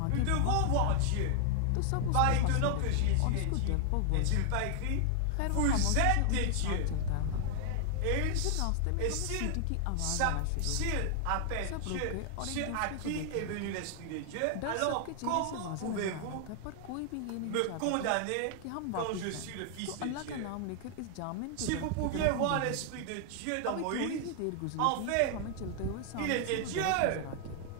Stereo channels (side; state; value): both; different; correlation 0.00